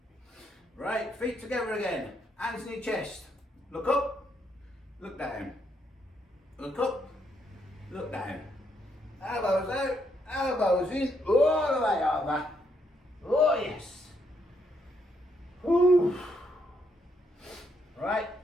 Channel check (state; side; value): normal; both; correlation 0.75